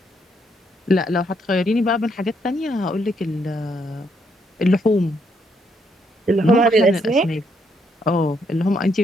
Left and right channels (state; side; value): normal; both; correlation 0.74